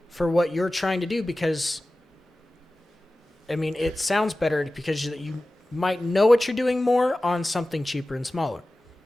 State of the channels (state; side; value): normal; both; correlation 0.96